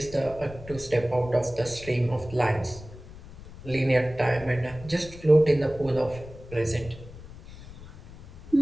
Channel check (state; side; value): noise; left; rumble, 16 dB below the sound